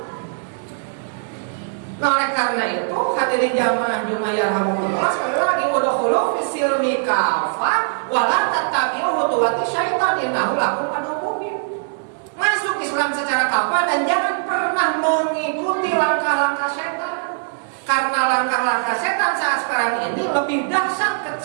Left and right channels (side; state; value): left; silent; 65 dB below the other